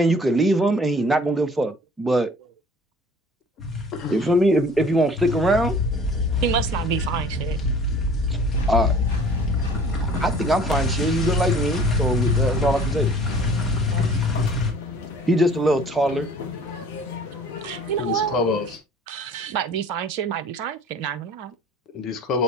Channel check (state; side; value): normal; both; correlation 0.49